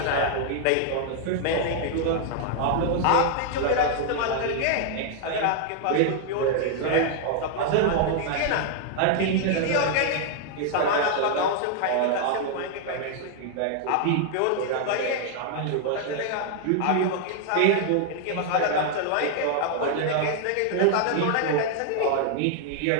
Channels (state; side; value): different; both; correlation 0.00